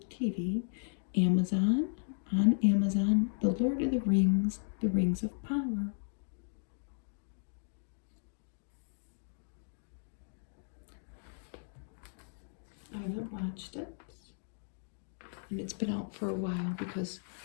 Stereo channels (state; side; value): silent; right; digital silence